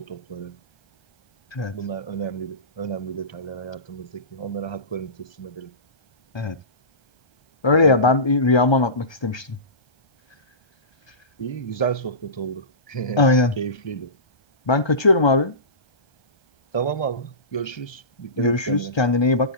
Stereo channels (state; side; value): late; right; 1.3 ms